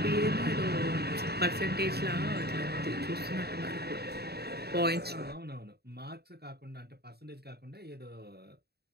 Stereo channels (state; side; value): late; left; 0.47 ms